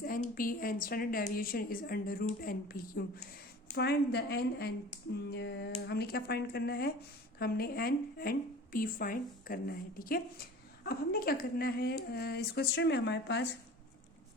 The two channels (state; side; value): normal; both; correlation 0.41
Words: np and standard deviation is under root npq. Find the n and हमने क्या find करना है, हमने n and p फाइंड करना है. ठीक है, अब हमने क्या करना है, इस क्वेश्चन में हमारे पास